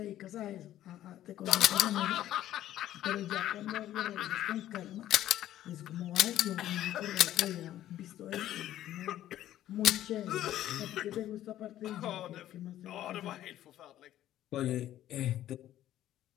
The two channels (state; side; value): quieter; right; 12.9 dB